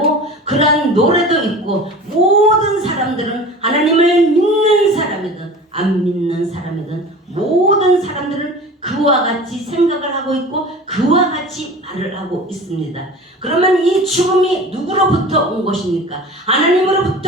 그러한 노래도 있고, 모든 사람들은 하나님을 믿는 사람이든 안 믿는 사람이든 모든 사람들은 그와 같이 생각을 하고 있고 그와 같이 말을 하고 있습니다. 그러면 이 죽음이 누구로부터 온 것입니까?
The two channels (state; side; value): normal; both; correlation 0.38